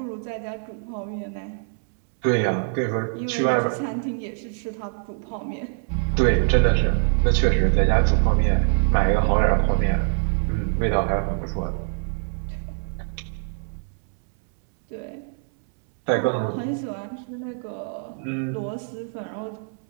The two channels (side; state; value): left; silent; 63 dB below the other